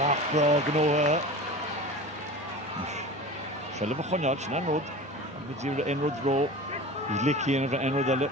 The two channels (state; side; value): normal; both; correlation 0.34